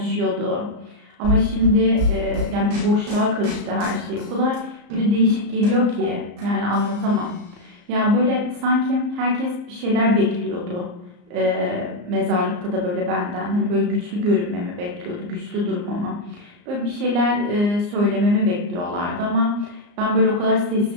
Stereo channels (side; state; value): left; late; 34 ms